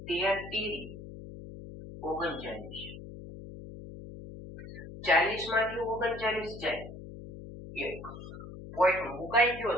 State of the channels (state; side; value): noise; left; hum, 12 dB below the sound